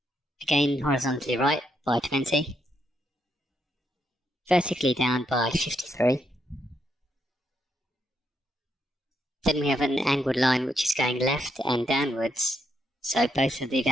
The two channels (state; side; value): normal; both; correlation 0.79